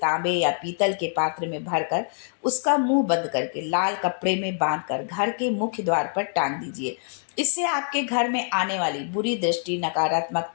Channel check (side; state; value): right; silent; digital silence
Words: या पीतल के पात्र में भरकर उसका मुंह बंद करके लाल कपड़े में बांधकर घर के मुख्य द्वार पर टांग दीजिए। इससे आपके घर में आने वाली बुरी दृष्टि,